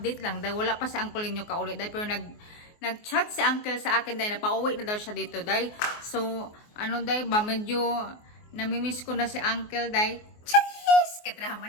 lang dahil wala pa si uncle ninyo kauli dahil pero nag-chat si uncle sa akin dahil napauwi na daw siya dito dahil so ano dahil ba medyo namimiss ko na si uncle dahil cheese kadrama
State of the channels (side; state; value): right; late; 24 ms